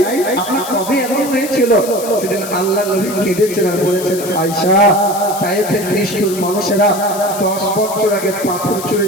আপনার কবে এমন হয়েছিল। সেদিন আল্লাহ নবী কেঁদেছেন আর বলেছেন, আয়েশা তায়েফের নিষ্ঠুর মানুষেরা 10 বছর আগে পাথর ছুঁড়ে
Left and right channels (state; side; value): noise; left; hiss, 11 dB below the sound